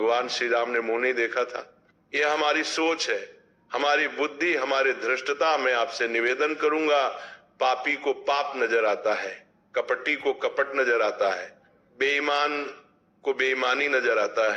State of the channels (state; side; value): identical; both; correlation 1.00